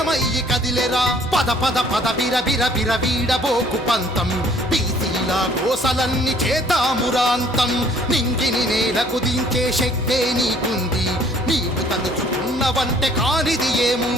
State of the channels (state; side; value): normal; both; correlation 0.58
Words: కదిలెరా. పద పద పద బిర బిర బిర వీడబోకు పంతం, బీసీల కోసలన్నీ చేతామురాంతం. నింగిని నేలకు దించే శక్తే నీకుంది, నీవు తలుచుకున్నవంటే కానిది